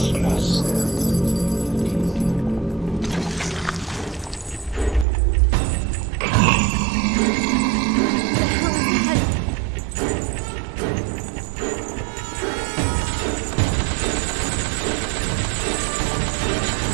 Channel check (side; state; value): left; drops out; at 5.1 s